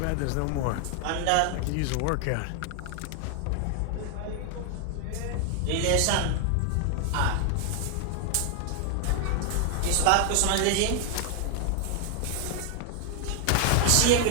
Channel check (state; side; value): different; both; correlation 0.00